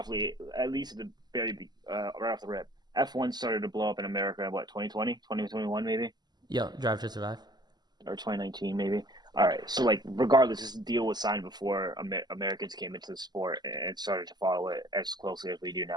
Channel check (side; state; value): left; late; 0.20 ms